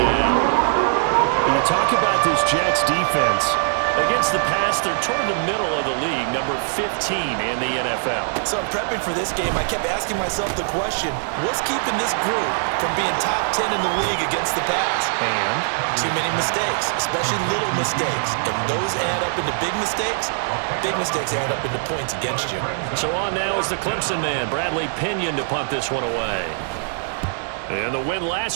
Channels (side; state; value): left; silent; 64 dB below the other